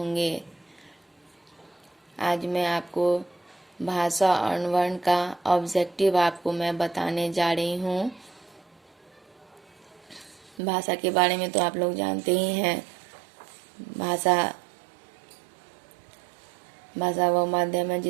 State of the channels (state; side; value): drops out; left; at 10.6 s